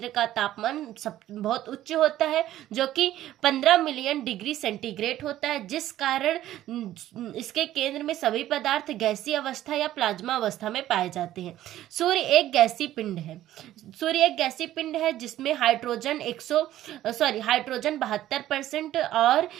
का तापमान बहुत उच्च होता है, जो कि 15 मिलियन डिग्री सेंटीग्रेड होता है, जिस कारण इसके केंद्र में सभी पदार्थ गैसीय अवस्था या प्लाज्मा अवस्था में पाए जाते हैं। सूर्य एक गैसीय पिंड है जिसमें हाइड्रोजन 72% और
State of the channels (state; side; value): quieter; left; 13.5 dB